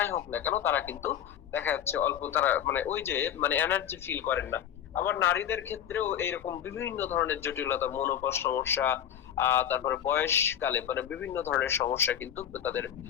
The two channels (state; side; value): quieter; right; 10.0 dB